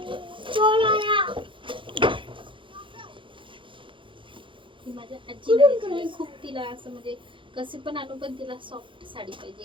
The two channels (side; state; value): left; late; 0.24 ms